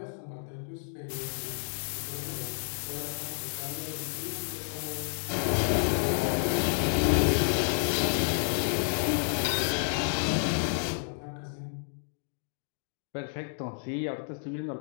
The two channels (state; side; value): silent; right; digital silence